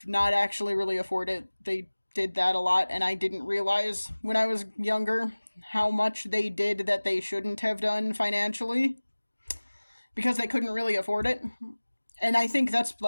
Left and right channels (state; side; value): inverted; both; correlation -1.00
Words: not actually really afford it, they did that a lot, and I didn't realize when I was younger how much they did that they shouldn't have done financially, because they couldn't really afford it. And I think that's